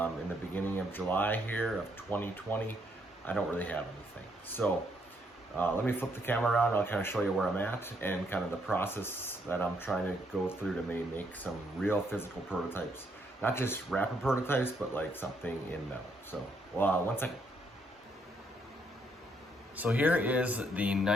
the beginning of July here of 2020, I don't really have anything. So let me flip the camera around. I'll kind of show you where I'm at and kind of the process that I'm trying to go through to maybe make some real physical prototypes. Not just rapid prototypes, but like something in metal. So, one second. So here is the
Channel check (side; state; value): both; normal; correlation 0.72